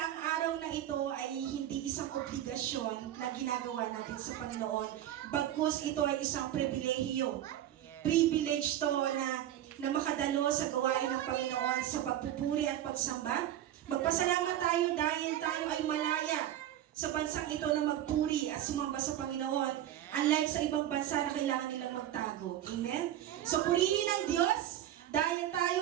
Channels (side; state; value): left; quieter; 12.1 dB